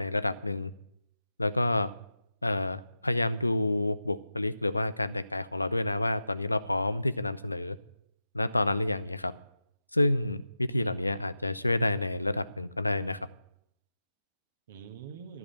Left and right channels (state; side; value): inverted; both; correlation -0.93